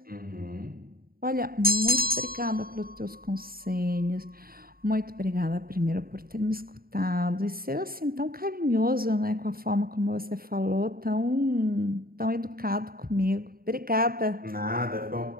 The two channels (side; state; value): left; late; 0.43 ms